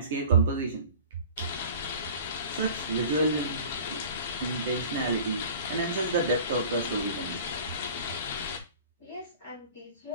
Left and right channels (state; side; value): inverted; both; correlation -0.42